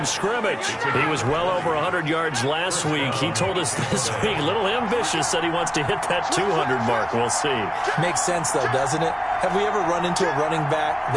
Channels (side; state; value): both; identical; correlation 1.00